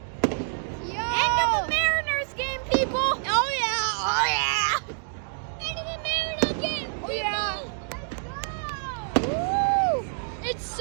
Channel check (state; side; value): silent; left; digital silence